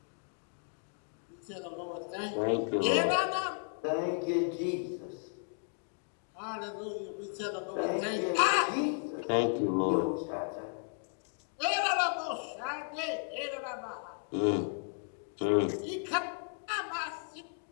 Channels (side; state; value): right; silent; 55 dB below the other